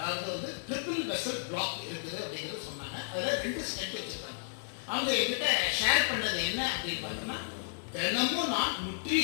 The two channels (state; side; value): silent; right; digital silence